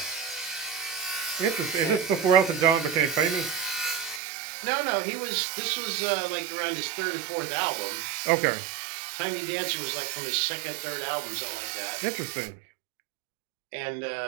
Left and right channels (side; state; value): left; drops out; at 4.2 s